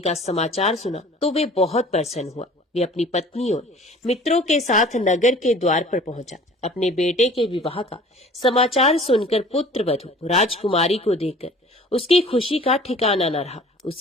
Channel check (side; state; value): both; normal; correlation 0.47